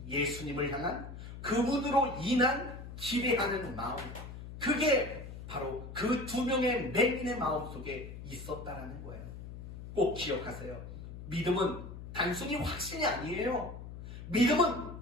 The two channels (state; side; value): noise; left; hum, 11 dB below the sound